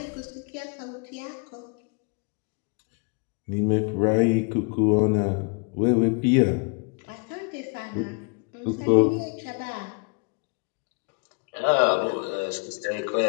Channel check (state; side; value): quieter; right; 33.6 dB